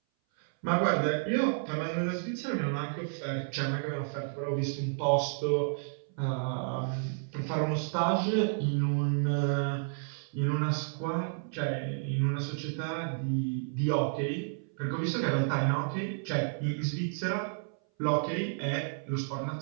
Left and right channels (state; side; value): silent; left; 57 dB below the other